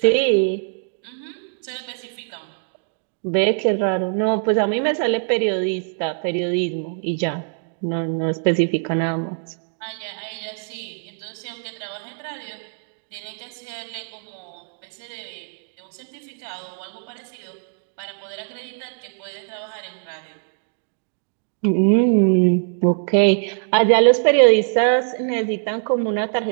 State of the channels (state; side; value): silent; left; digital silence